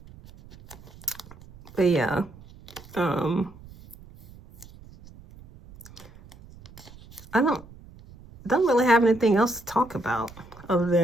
But yeah, I don't really have anything else to talk about other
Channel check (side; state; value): right; noise; rumble, 21 dB below the sound